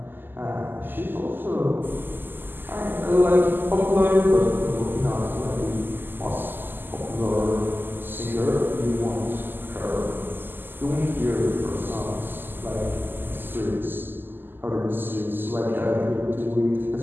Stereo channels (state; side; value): late; left; 0.094 ms